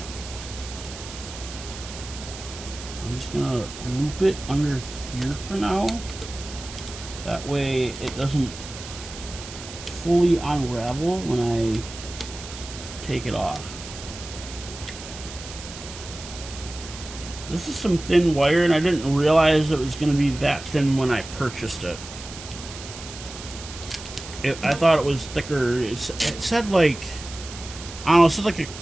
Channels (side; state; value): right; noise; hiss, 13 dB below the sound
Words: I'm just gonna loop it under here for now. That way it doesn't fully unravel when I take it off. This is some thin wire, and I didn't realize it was going to be that thin when I purchased it. I thought it was thicker. It said like, I don't know, it said like a